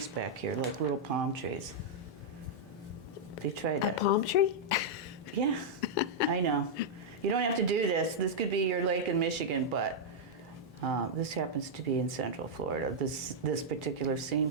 back here, like little palm trees. They tried A that. palm tree? Yeah, I know. You don't have to do this. This could be your lake in Michigan, but this happens to be in Central Florida, this particular scene,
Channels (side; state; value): both; normal; correlation -0.05